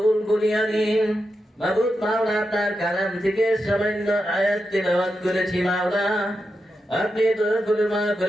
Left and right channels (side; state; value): both; normal; correlation 0.87